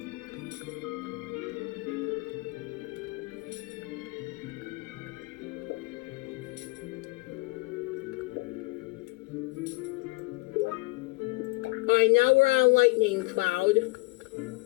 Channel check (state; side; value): quieter; right; 25.0 dB